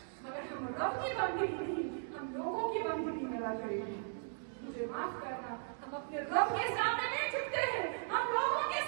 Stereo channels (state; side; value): silent; left; digital silence